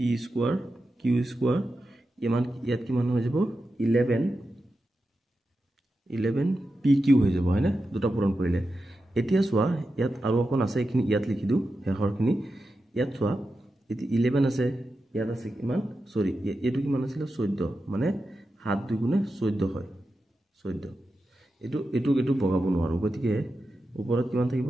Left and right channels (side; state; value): both; normal; correlation 0.90